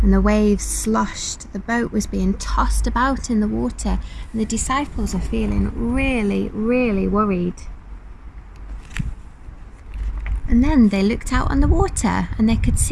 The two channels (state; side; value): identical; both; correlation 1.00